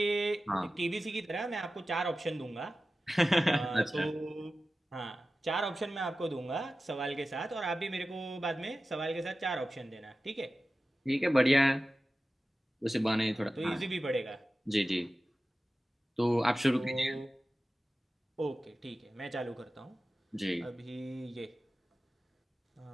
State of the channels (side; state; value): both; normal; correlation 0.95